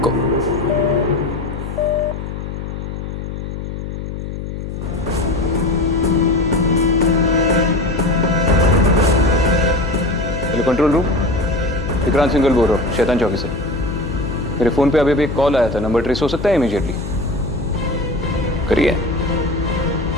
Hello control room, Vikrant Singhal बोल रहा हूँ, शैतान चौकी से। मेरे फोन पे अभी भी एक कॉल आया था, नंबर ट्रेस हो सकता है इमीडिएटली? करिए।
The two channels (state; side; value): noise; left; hum, 7 dB below the sound